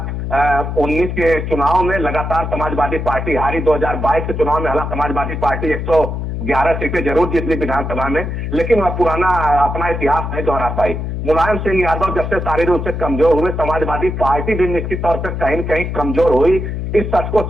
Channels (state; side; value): noise; left; hum, 4 dB below the sound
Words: के चुनाव में लगातार समाजवादी पार्टी हारी। 2022 के चुनाव में हालांकि समाजवादी पार्टी 111 सीटें जरूर जीत ली विधानसभा में, लेकिन वह पुराना अपना इतिहास नहीं दोहरा पाई। मुलायम सिंह यादव जब से शारीरिक रूप से कमजोर हुए, समाजवादी पार्टी भी निश्चित तौर पर कहीं न कहीं कमजोर हुई। इस सच को